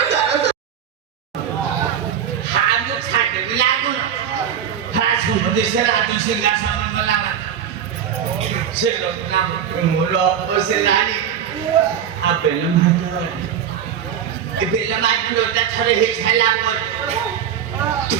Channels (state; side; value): quieter; left; 8.8 dB